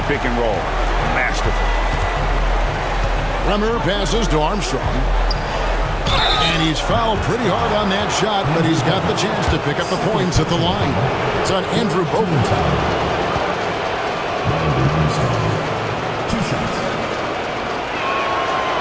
pick and roll. Masterful. Bremer passes to Armstrong. And he's fouled pretty hard on that shot, but he's got the chance to pick up the points at the line. It's on Andrew Bogut. 2 shots.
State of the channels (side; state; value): both; identical; correlation 1.00